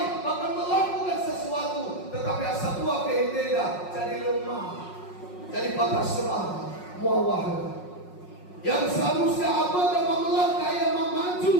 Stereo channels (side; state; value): right; late; 5.5 ms